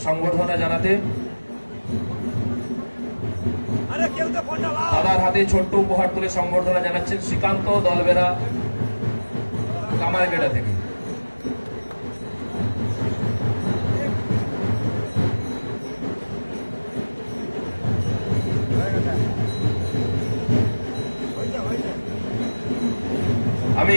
সংবর্ধনা জানাতে। দাদার হাতে ছোট্ট উপহার তুলে সংবর্ধনা জানাচ্ছেন শ্রীকান্ত দলবেরা কামারগেড়া থেকে। আমি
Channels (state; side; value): inverted; both; correlation -1.00